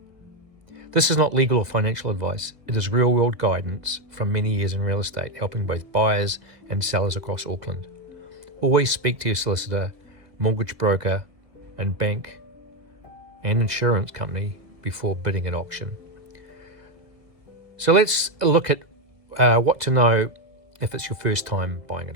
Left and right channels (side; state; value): left; late; 1.6 ms